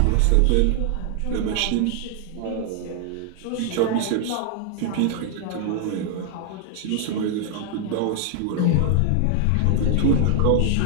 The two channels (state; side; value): different; both; correlation 0.00